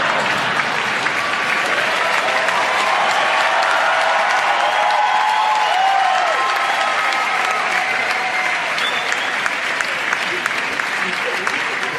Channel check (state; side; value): identical; both; correlation 1.00